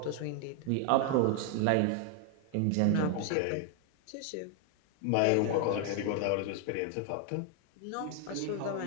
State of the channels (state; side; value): different; both; correlation 0.00